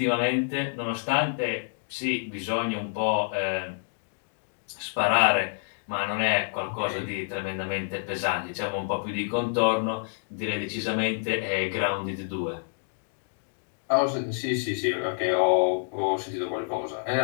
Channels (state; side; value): silent; right; digital silence